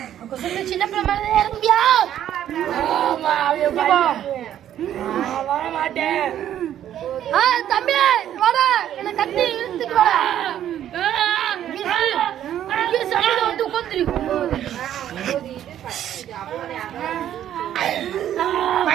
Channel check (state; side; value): quieter; left; 11.0 dB